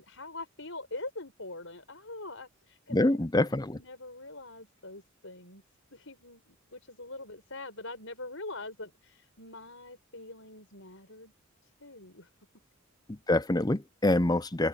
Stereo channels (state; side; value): normal; both; correlation 0.66